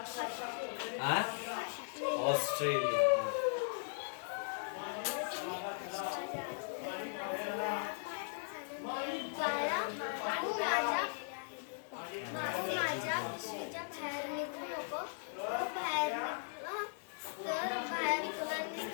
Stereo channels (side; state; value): right; silent; digital silence